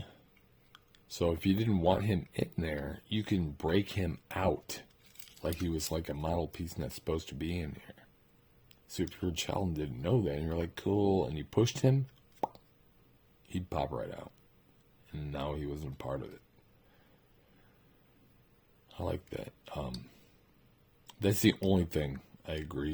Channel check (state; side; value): identical; both; correlation 1.00